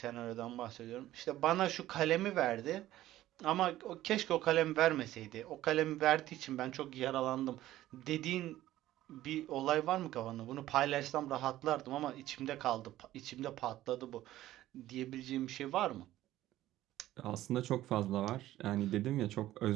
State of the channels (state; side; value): quieter; left; 14.6 dB